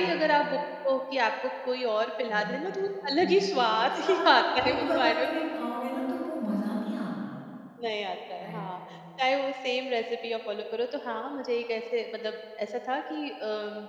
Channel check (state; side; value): identical; both; correlation 1.00